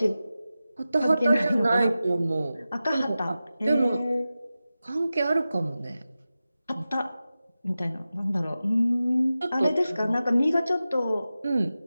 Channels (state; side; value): inverted; both; correlation -0.94